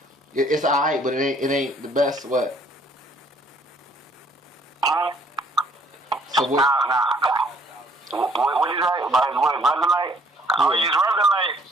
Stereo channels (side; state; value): both; normal; correlation 0.62